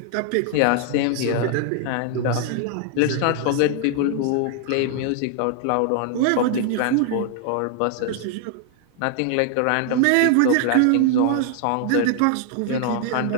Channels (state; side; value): different; both; correlation 0.00